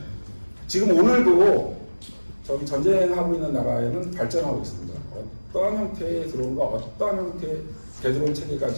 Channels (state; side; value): inverted; both; correlation -1.00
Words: 지금 오늘도 저기 전쟁하고 있는 나라에는 발전하고 있습니다. 어떠한 형태의 드론과 어떠한 형태의 대드론 체계가